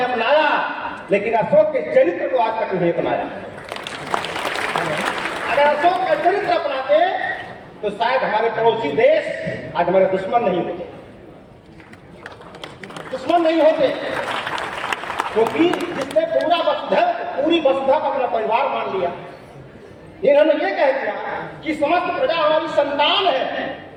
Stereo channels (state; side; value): identical; both; correlation 1.00